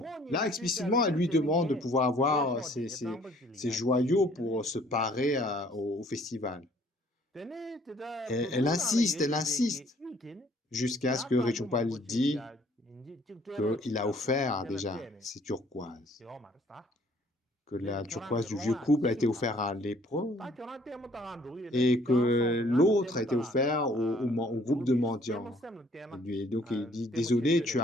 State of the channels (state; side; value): normal; both; correlation 0.59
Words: Là, explicitement, elle lui demande de pouvoir avoir ces joyaux pour se parer au festival. Et elle insiste, jusqu'à ce que Rechungpa lui dise qu'il a offert déjà ces turquoises. que la turquoise du vieux couple a été offerte à lépreux et que l'autre a été offert au groupe de mendiants. Et donc il dit, désolé,